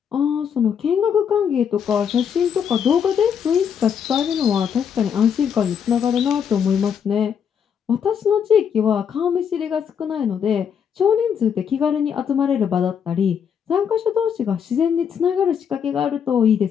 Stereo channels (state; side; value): quieter; right; 7.6 dB